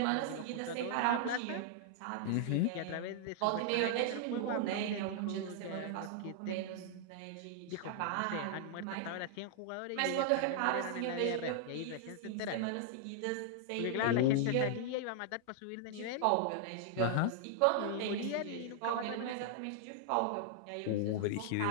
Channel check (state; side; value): different; both; correlation -0.01